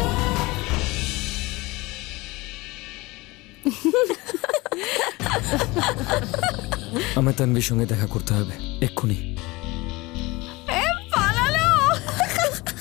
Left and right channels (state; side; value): quieter; right; 22.4 dB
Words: আমার তানভীর সঙ্গে দেখা করতে হবে এক্ষুনি।